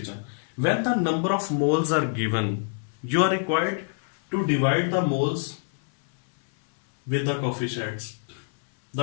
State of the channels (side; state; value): right; silent; 61 dB below the other